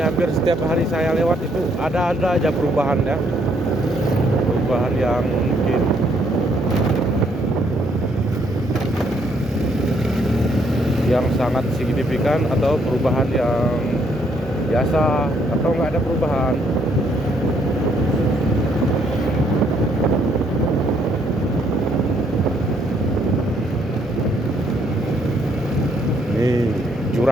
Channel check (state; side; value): normal; both; correlation 0.70